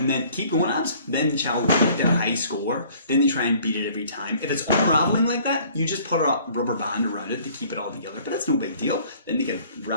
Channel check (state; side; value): inverted; both; correlation -0.55